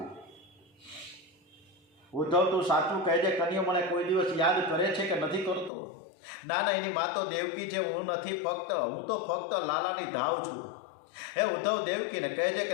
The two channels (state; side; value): drops out; right; at 5.7 s